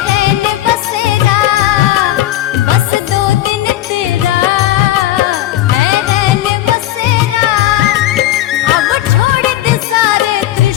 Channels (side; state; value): right; quieter; 13.9 dB